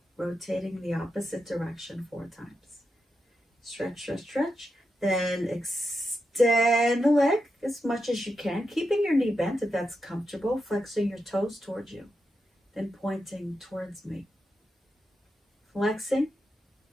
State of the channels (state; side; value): normal; both; correlation 0.87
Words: rotating the opposite direction 4 times. Stretch, stretch, stretch. Then extend the leg as much as you can, keeping your knee bent if that's comfortable, flexing your toes towards you, then pointing towards me. Flexing,